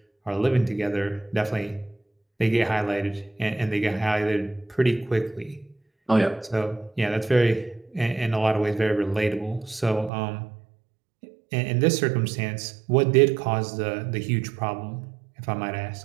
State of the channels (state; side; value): drops out; left; at 10.1 s